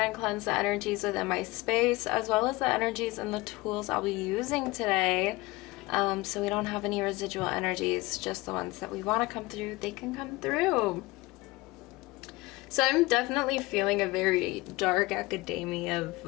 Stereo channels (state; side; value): quieter; right; 21.5 dB